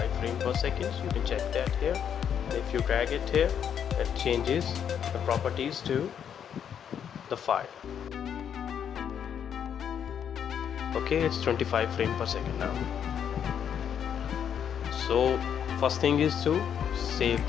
frames per second. You can check that here. If you drag it here, it changes the properties to the file. Okay, it's 25 frames per second now. So first thing is to save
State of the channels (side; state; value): right; quieter; 8.5 dB